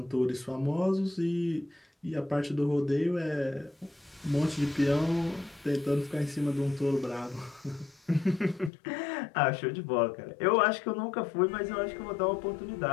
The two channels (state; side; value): drops out; right; at 8.7 s